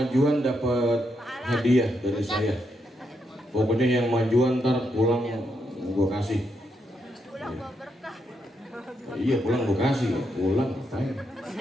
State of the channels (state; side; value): normal; both; correlation 0.80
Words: dapat hadiah dari saya. Pokoknya yang majuan ntar pulang gue kasih. Iya pulang gue kasih. Pulang ngapain?